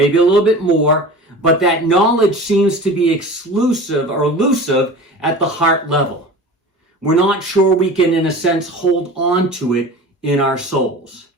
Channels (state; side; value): normal; both; correlation 0.37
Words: more, but that knowledge seems to be exclusive or elusive at the heart level. We're not sure we can, in a sense, hold on to it in our souls.